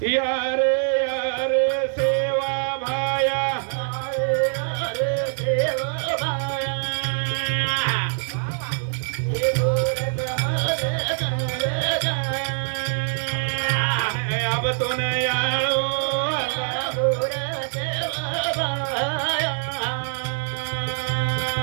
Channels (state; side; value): silent; left; 56 dB below the other